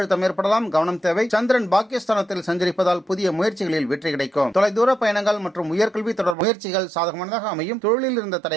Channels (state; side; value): drops out; left; at 6.4 s